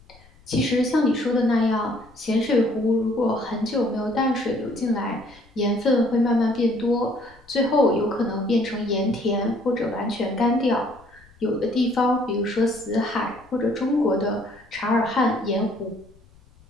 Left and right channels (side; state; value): left; noise; rumble, 27 dB below the sound